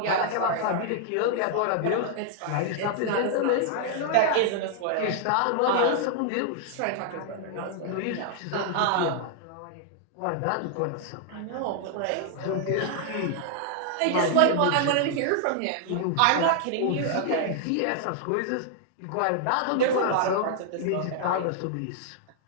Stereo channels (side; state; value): both; different; correlation -0.01